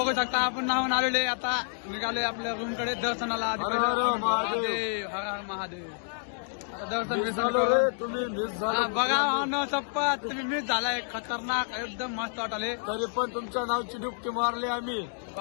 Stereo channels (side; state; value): right; silent; digital silence